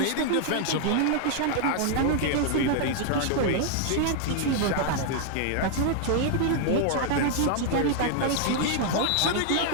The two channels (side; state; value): both; different; correlation 0.00